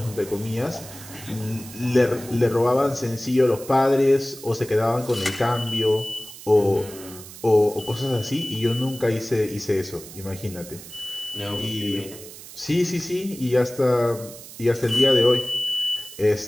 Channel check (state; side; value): noise; right; hiss, 16 dB below the sound